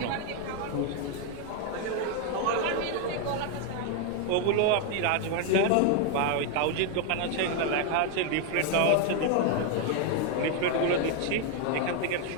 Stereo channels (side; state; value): both; different; correlation 0.01